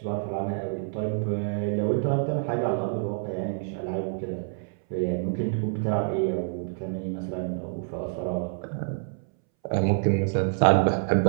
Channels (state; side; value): silent; left; 60 dB below the other